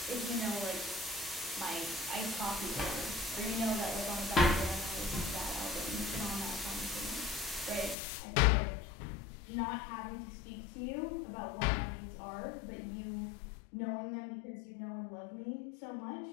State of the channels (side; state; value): right; drops out; at 8.0 s